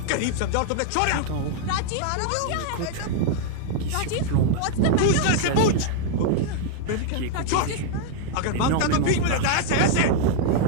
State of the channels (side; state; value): both; different; correlation 0.00